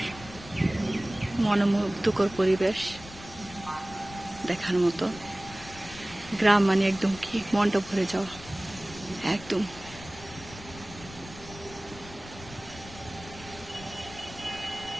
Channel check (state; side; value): noise; left; rumble, 16 dB below the sound